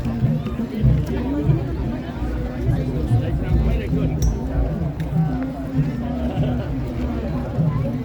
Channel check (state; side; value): identical; both; correlation 1.00